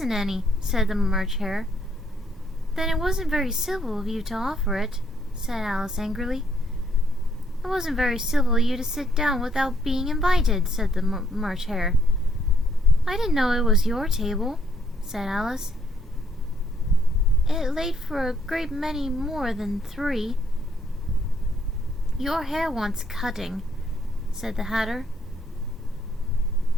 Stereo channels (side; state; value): both; normal; correlation 0.69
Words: any, said the March Hare. Then it wasn't very civil of you to offer it, said Alice angrily. It wasn't very civil of you to sit down without being invited, said the March Hare. I didn't know it was your table, said Alice. It laid for a great many more than 3. Your hair wants cutting, said the Hatter.